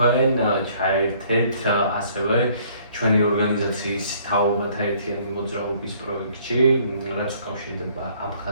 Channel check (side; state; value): both; inverted; correlation -0.60